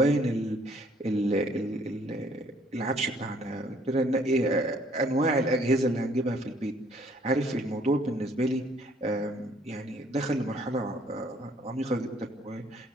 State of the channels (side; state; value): both; normal; correlation 0.62